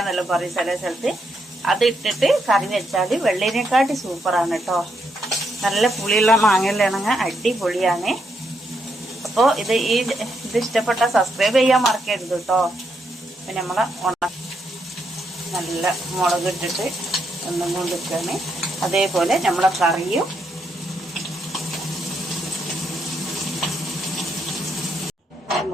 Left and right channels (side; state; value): both; normal; correlation 0.79